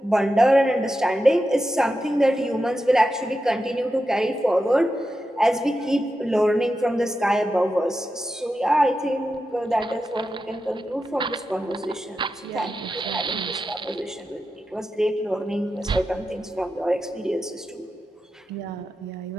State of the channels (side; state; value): both; normal; correlation 0.90